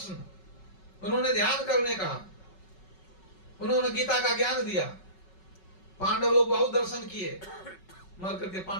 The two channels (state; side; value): late; right; 5.4 ms